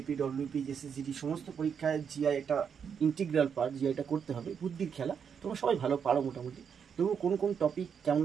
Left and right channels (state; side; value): quieter; left; 7.1 dB